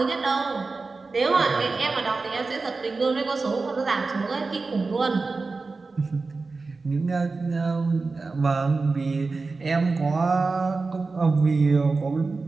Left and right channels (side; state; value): left; quieter; 3.9 dB